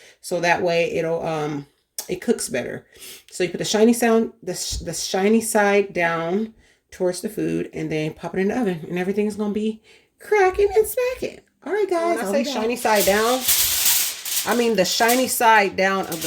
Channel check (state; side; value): identical; both; correlation 1.00